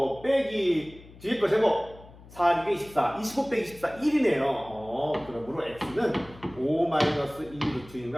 빼기 뒤에 거 제곱 4, 2개 24, 25 빼기 24, 1이네요. 그러므로 x는 5 마이너스 2 루트 6을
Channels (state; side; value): noise; left; hum, 21 dB below the sound